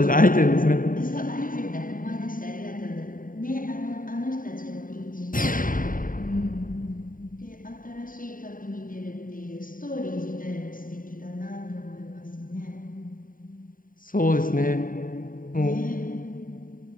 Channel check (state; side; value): late; right; 0.40 ms